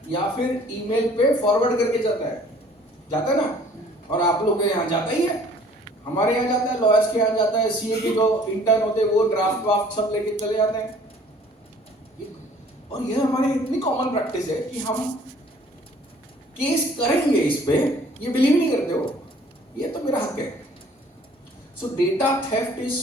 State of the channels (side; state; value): both; normal; correlation 0.55